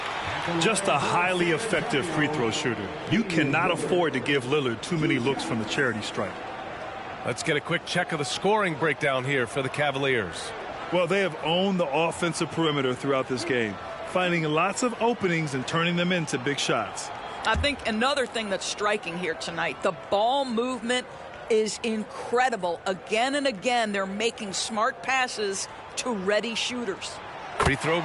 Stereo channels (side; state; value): both; identical; correlation 1.00